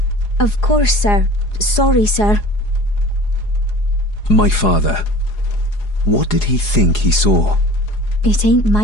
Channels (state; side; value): late; right; 4.8 ms